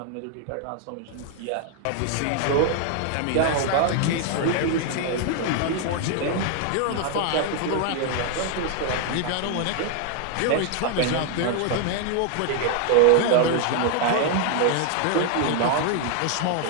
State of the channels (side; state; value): both; different; correlation 0.00